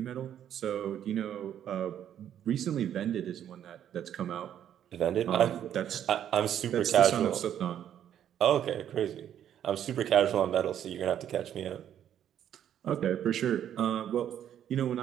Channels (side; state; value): left; quieter; 10.1 dB